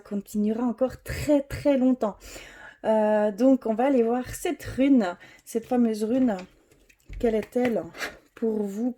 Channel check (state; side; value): identical; both; correlation 1.00